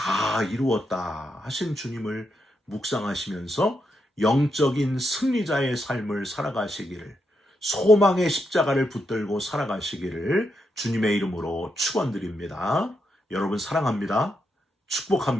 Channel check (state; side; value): normal; both; correlation 0.82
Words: 이루었다 하신 주님을 묵상하시면서 영적인 승리자의 삶을 살아가시기를, 소망의 십자가를 붙들고 살아가시기를 주님의 이름으로 축원드립니다. 여러분 사랑합니다.